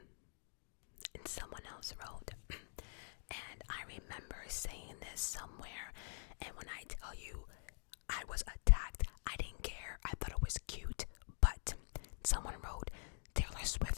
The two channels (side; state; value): right; silent; digital silence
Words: And someone else wrote, and I remember saying this somewhere, and when I tell you I was attacked, I didn't care. I thought it was cute. But someone wrote, Taylor Swift